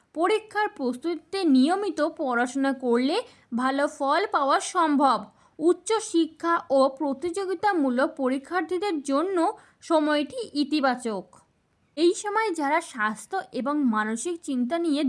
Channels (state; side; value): identical; both; correlation 1.00